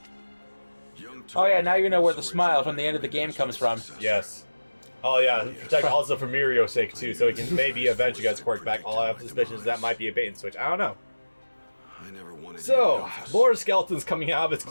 Oh yeah, now you know where the smile from the end of the game comes from. Yes. Oh yeah, protect also for Mirio's sake too, so he can maybe eventually get his quirk back. All I have suspicions that might be a bait and switch. I don't know. So, more skeletons coming out of his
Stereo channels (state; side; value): inverted; both; correlation -1.00